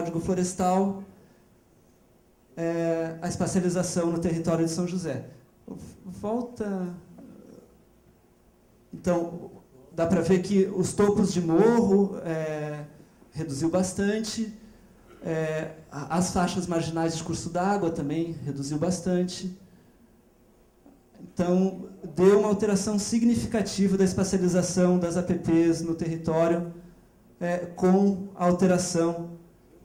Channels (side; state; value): both; identical; correlation 1.00